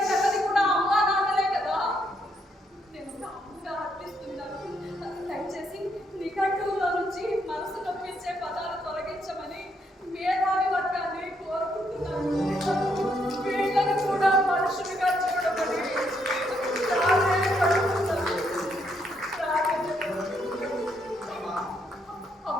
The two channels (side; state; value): both; normal; correlation 0.75